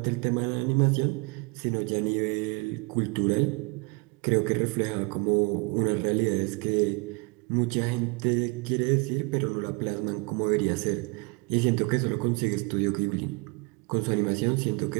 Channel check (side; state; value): left; quieter; 29.4 dB